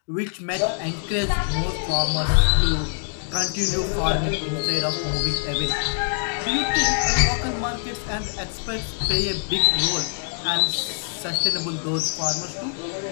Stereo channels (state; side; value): silent; right; digital silence